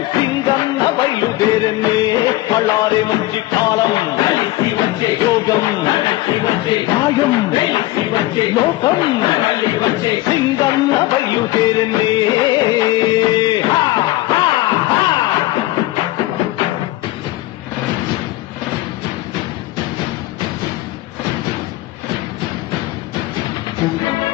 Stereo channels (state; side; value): quieter; right; 17.6 dB